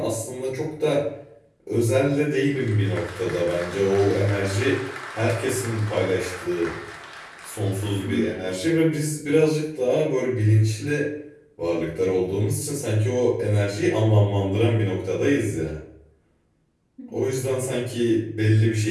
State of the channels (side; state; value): both; identical; correlation 1.00